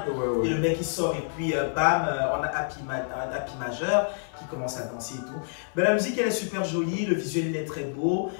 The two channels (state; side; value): silent; right; 56 dB below the other